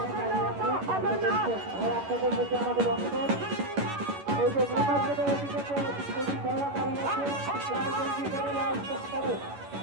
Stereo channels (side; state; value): left; late; 11 ms